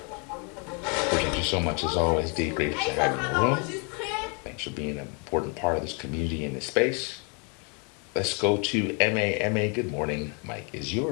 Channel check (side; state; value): right; quieter; 35.9 dB